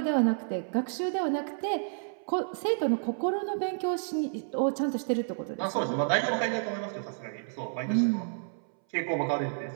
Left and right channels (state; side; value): silent; left; 58 dB below the other